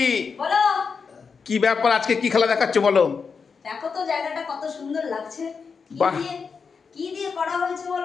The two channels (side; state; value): right; quieter; 5.5 dB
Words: বলো কি ব্যাপার? আজকে কি খেলা দেখাচ্ছ বলো? দেখো তো জায়গাটা কত সুন্দর লাগছে। বাহ। কি দিয়ে করা হয়েছে